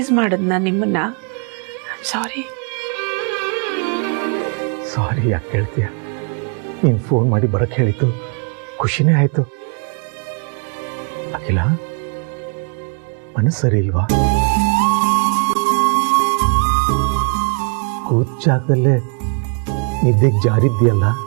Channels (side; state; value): left; quieter; 39.0 dB